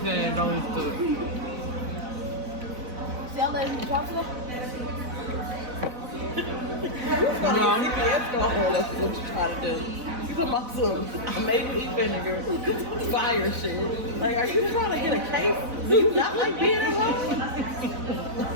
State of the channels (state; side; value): late; left; 4.0 ms